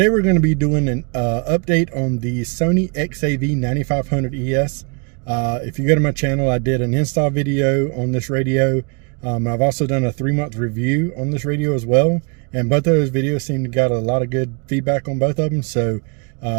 we're going to be doing an update on the Sony XAV-9500ES. If you go to my channel, I did an install video on this radio. I've also done a 3-month review on this radio as well, and both of those videos seem to got a lot of good feedback on both of them. So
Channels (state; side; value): quieter; left; 35.1 dB